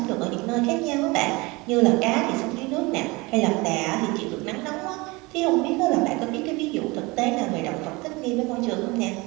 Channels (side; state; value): left; quieter; 24.2 dB